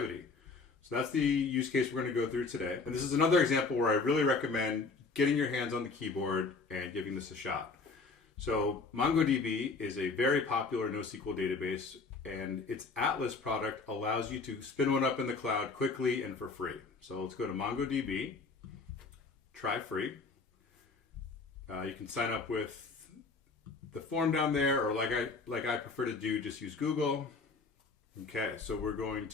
So that's the use case we're going to go through today. And this is another example where I really recommend getting your hands on the keyboard and giving this a shot. So MongoDB is a very popular NoSQL database, and its Atlas product allows you to spin one up in the cloud quickly and for free. So let's go to MongoDB, try free. You can sign up with the form down there, or like I prefer to do, just use Google. Okay, so we're going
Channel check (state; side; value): quieter; right; 4.2 dB